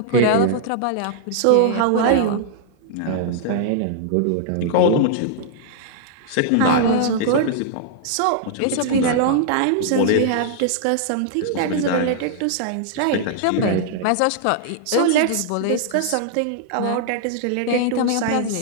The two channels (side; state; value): both; different; correlation -0.01